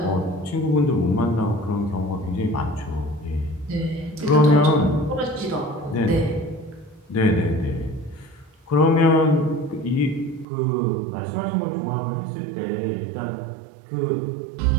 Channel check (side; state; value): left; drops out; at 10.5 s